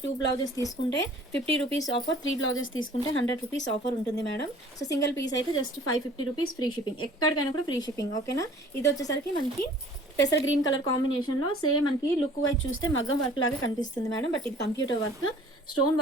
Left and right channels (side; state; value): both; normal; correlation 0.51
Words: 2 బ్లౌజెస్ తీసుకుంటే 50 రూపీస్ ఆఫర్, 3 బ్లౌజెస్ తీసుకుంటే 100 రూపీస్ ఆఫర్ ఉంటుంది మేడం. సో, సింగిల్ పీస్ అయితే జస్ట్ 550 రూపీస్ ఫ్రీ షిప్పింగ్. ఎక్కడికైనా కూడా ఫ్రీ షిప్పింగ్ ఓకేనా. ఇదొచ్చేసరికి మనకి పెసర్ గ్రీన్ కలర్ కాంబినేషన్‌లో సేమ్ మనకి లుక్ వైజ్ చూస్తే మగ్గం వర్క్ లాగా కనిపిస్తుంది మేడం. బట్ ఇది కంప్యూటర్ వర్క్. స్టోన్